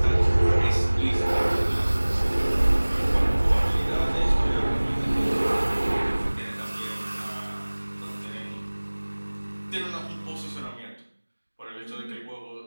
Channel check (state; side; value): inverted; both; correlation -1.00